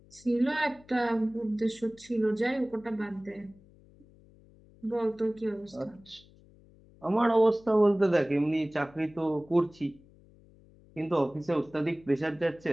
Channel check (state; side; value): noise; left; hum, 26 dB below the sound